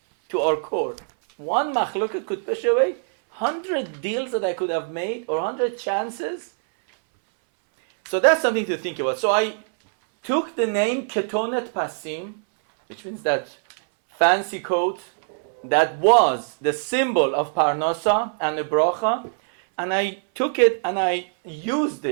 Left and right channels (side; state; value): left; silent; 63 dB below the other